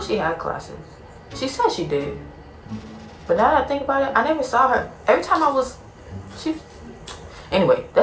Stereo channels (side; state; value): both; identical; correlation 1.00